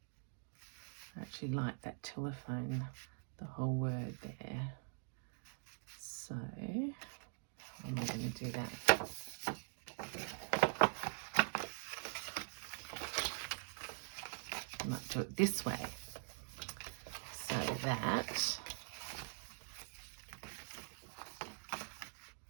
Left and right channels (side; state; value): left; silent; digital silence